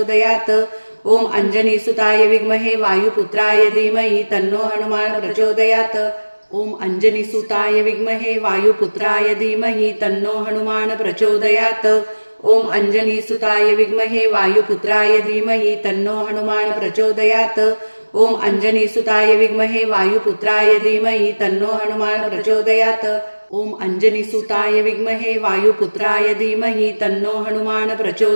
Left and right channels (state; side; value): inverted; both; correlation -1.00